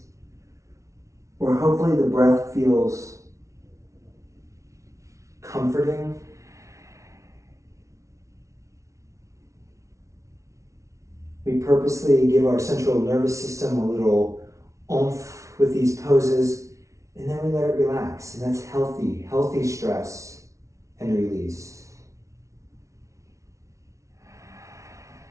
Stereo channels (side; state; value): left; late; 0.14 ms